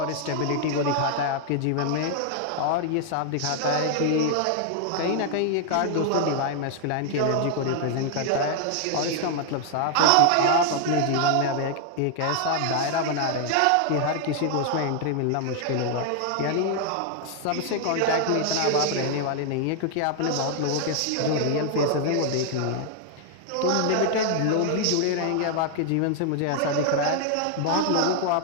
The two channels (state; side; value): different; both; correlation 0.00